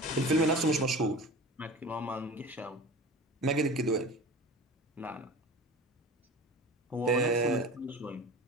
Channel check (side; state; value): both; normal; correlation 0.37